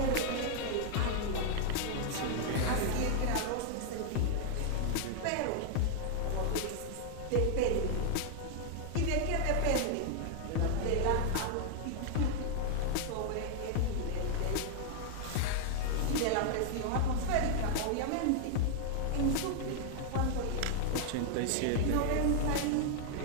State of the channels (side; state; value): both; different; correlation 0.00